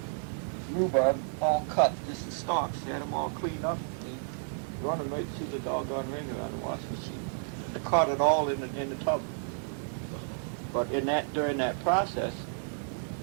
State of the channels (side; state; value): left; silent; digital silence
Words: rhubarb all cut, just the stalks, had them all cleaned up. And he run them right through the doggone Ringer on the wash machine. And caught it all in the tub. But during that process,